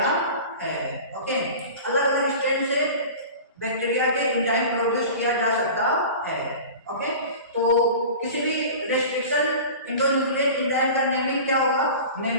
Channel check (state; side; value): inverted; both; correlation -0.36